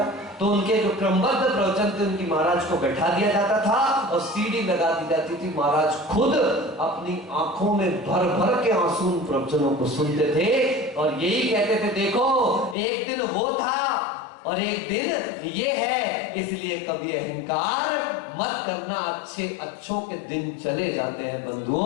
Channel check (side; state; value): right; drops out; at 12.8 s